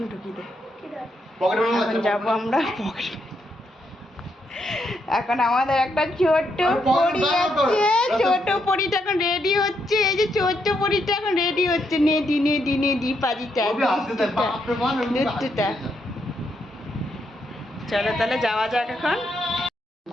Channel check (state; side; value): normal; both; correlation 0.78